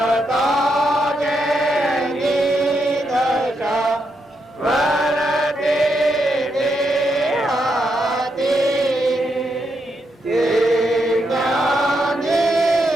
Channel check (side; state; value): both; normal; correlation 0.81